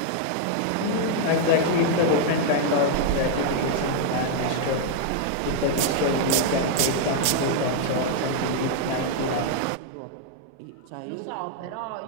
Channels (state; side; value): different; both; correlation 0.00